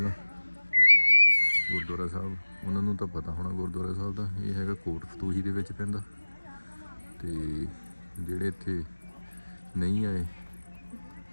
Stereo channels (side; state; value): both; inverted; correlation -1.00